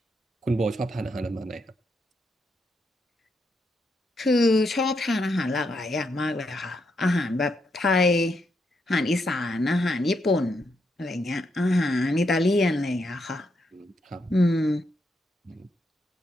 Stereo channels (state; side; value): normal; both; correlation 0.80